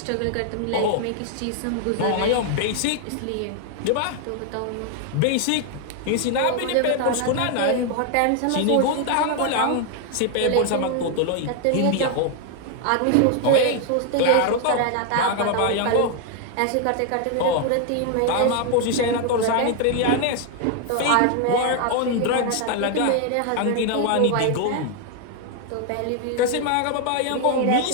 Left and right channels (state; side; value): different; both; correlation 0.00